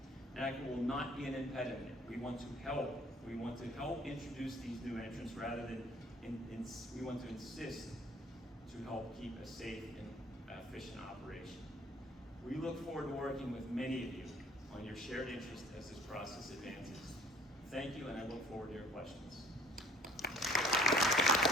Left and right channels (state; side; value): normal; both; correlation 0.55